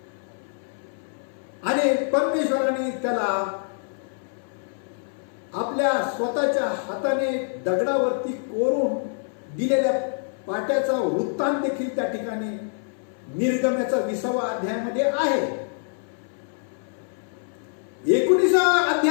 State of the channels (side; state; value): right; silent; 61 dB below the other